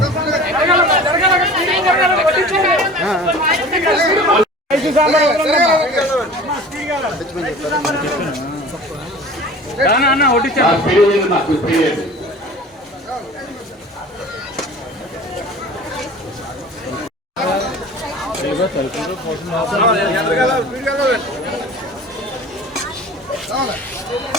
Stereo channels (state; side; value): normal; both; correlation 0.41